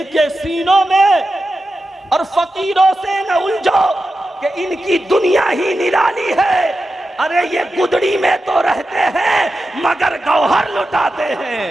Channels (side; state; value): both; normal; correlation 0.91